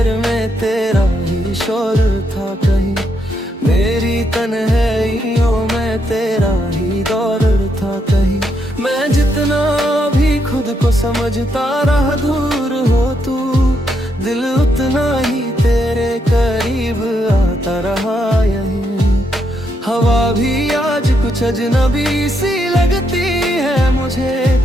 में तेरा ही शोर था कहीं, मेरी तन्हाइयों में तेरा ही दौर था कहीं। मैं जितना भी खुद को समझता रहा दूर हो तू, दिल उतना ही तेरे करीब आता रहा यहीं। हवा भी आज कुछ अजनबी सी लगती है मुझे,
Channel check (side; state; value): both; normal; correlation 0.78